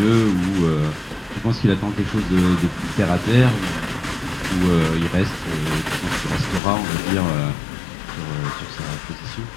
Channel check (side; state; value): right; drops out; at 6.6 s